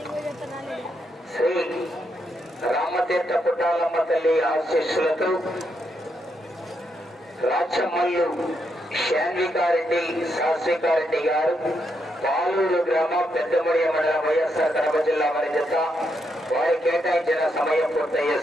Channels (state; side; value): normal; both; correlation 0.80